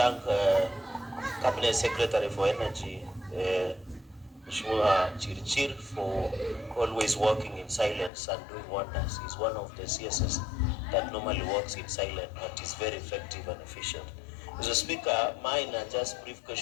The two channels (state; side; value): drops out; right; at 8.1 s